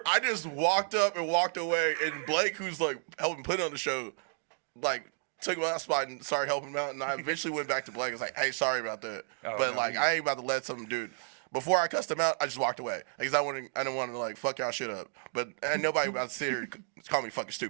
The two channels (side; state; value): left; silent; 57 dB below the other